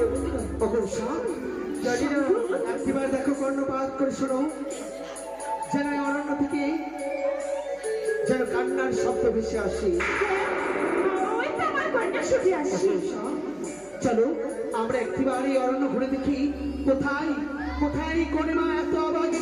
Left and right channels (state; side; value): noise; right; hum, 28 dB below the sound